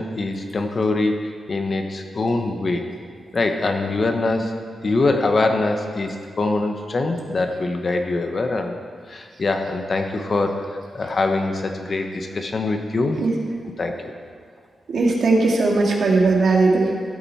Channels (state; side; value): normal; both; correlation 0.87